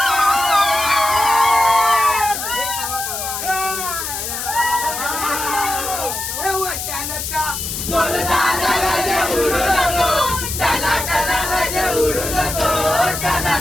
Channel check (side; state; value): left; noise; hiss, 5 dB below the sound